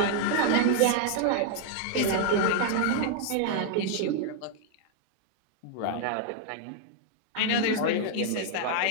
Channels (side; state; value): both; different; correlation 0.00